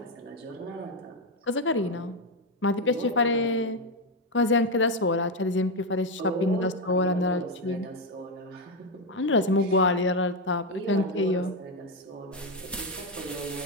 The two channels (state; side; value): normal; both; correlation 0.07